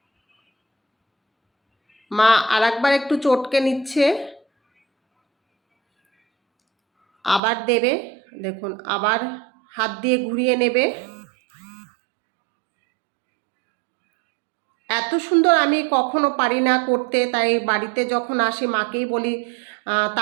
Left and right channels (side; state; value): left; drops out; at 7.4 s